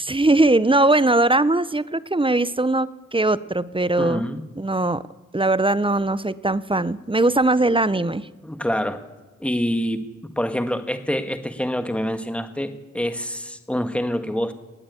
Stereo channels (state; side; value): normal; both; correlation 0.62